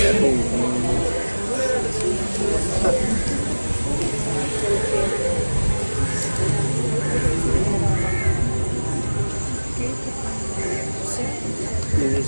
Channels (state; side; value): inverted; both; correlation -1.00